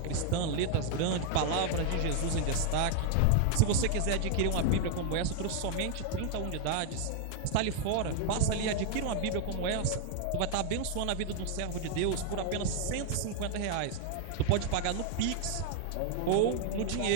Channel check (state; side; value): different; both; correlation 0.00